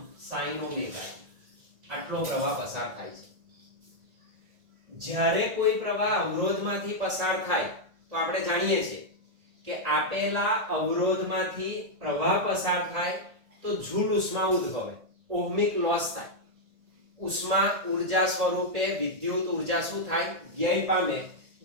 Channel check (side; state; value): left; late; 1.8 ms